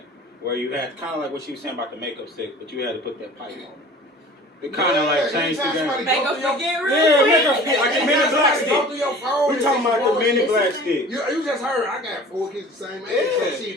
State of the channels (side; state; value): both; normal; correlation 0.44